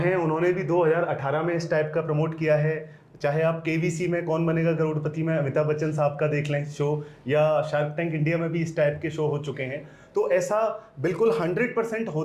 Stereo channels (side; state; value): both; identical; correlation 1.00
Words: उन्होंने भी 2018 में इस टाइप का प्रमोट किया है। चाहे आप केवीसी में कौन बनेगा करोड़पति में अमिताभ बच्चन साहब का देख लें शो, या शार्क टैंक इंडिया में भी इस टाइप के शो हो चुके हैं। तो ऐसा बिल्कुल 100%